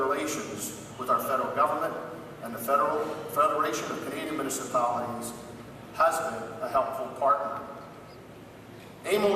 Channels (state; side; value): identical; both; correlation 1.00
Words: with our federal government, and the Federation of Canadian Municipalities has been a helpful partner.